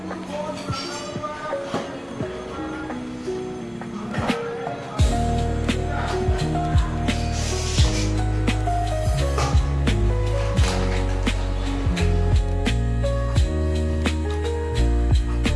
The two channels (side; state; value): both; identical; correlation 1.00